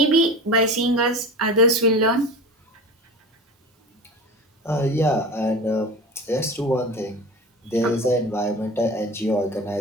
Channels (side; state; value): both; normal; correlation 0.32